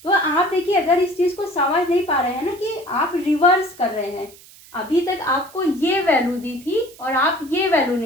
तो आप देखिए, अगर इस चीज को समझ नहीं पा रहे हैं ना कि आप रिवर्स कर रहे हैं, अभी तक आपको ये वैल्यू दी थी और आप ये वैल्यू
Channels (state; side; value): noise; right; hiss, 22 dB below the sound